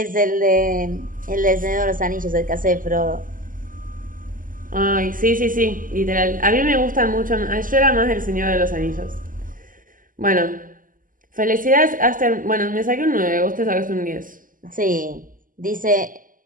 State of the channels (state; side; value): late; left; 0.40 ms